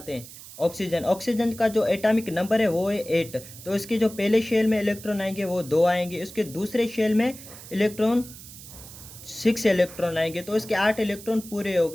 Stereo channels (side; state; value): right; noise; hiss, 16 dB below the sound